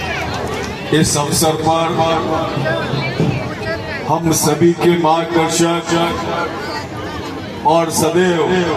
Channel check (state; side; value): identical; both; correlation 1.00